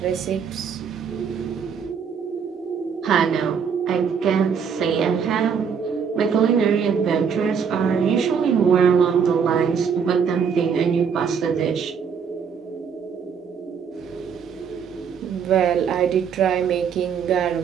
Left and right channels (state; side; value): quieter; left; 6.8 dB